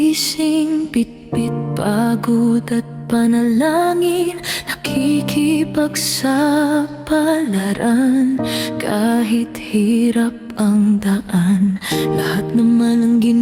bitbit pagod at panalangin, nakikipagsapalaran kahit hirap ang daan. Lahat naman ang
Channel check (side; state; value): both; identical; correlation 1.00